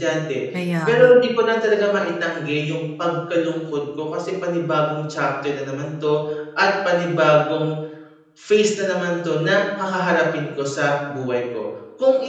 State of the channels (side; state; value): both; identical; correlation 1.00